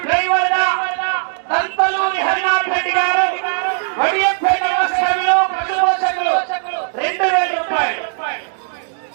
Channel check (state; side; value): silent; left; digital silence